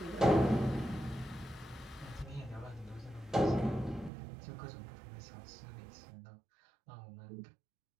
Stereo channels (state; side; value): drops out; left; at 4.1 s